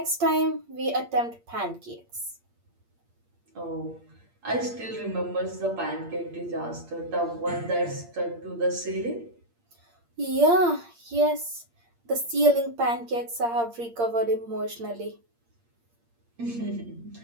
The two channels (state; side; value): late; left; 8.6 ms